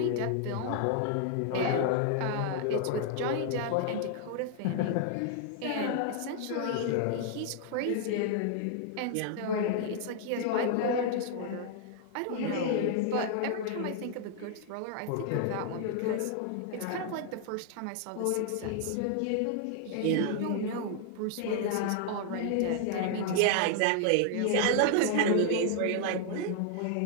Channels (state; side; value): different; both; correlation 0.00